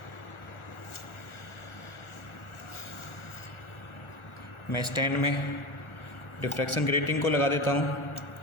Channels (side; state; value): right; late; 1.4 ms